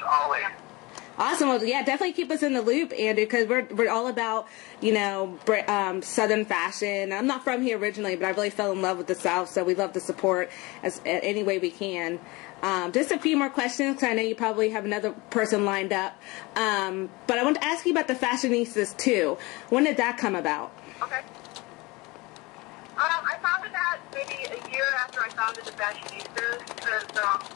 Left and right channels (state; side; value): quieter; right; 23.7 dB